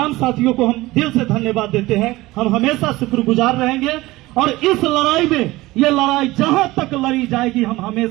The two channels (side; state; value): left; quieter; 19.2 dB